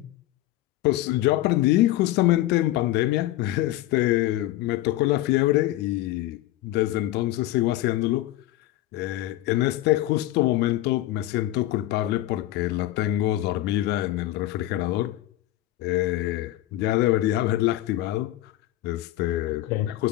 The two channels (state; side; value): quieter; right; 15.4 dB